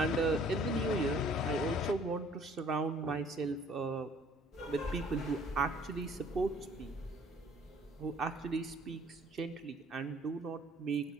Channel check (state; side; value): normal; both; correlation 0.56